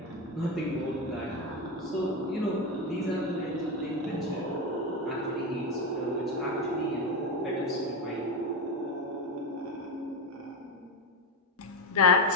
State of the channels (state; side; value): normal; both; correlation 0.14